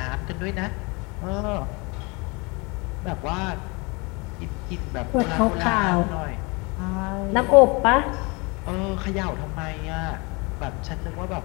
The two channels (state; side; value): quieter; right; 28.1 dB